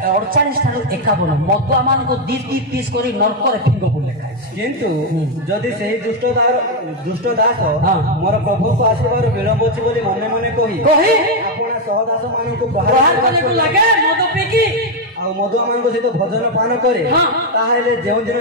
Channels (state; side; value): normal; both; correlation 0.04